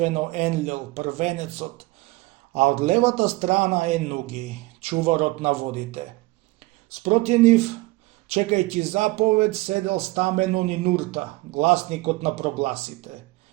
Енлил, првенецот, а од левата страна Енуги, чуварот на водите. Спроти нив, чекајќи заповед, седел стамено Нинурта, гласникот на прогласите.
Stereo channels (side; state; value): left; quieter; 21.2 dB